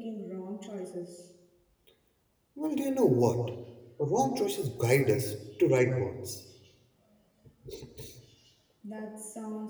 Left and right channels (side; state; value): both; identical; correlation 1.00